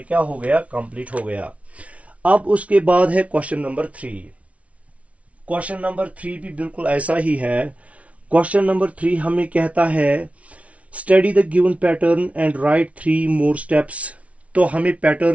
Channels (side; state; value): left; late; 0.065 ms